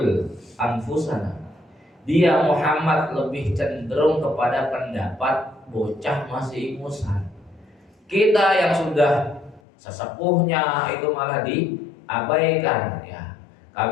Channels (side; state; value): right; drops out; at 9.6 s